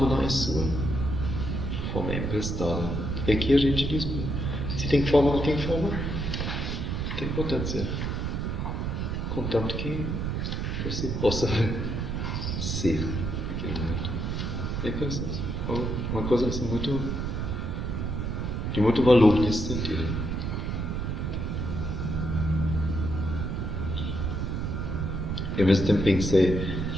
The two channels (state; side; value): noise; right; rumble, 2 dB below the sound